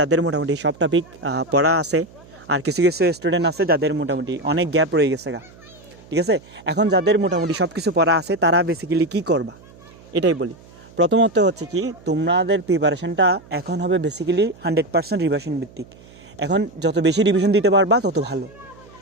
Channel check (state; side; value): noise; right; hum, 23 dB below the sound